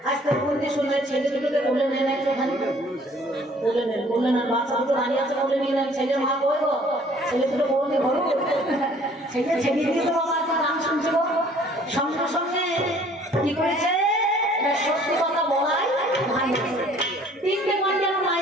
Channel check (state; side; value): normal; both; correlation 0.56